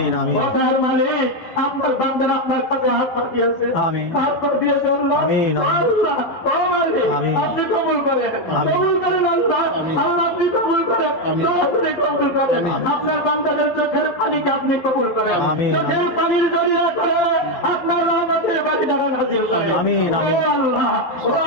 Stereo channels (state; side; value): late; right; 12 ms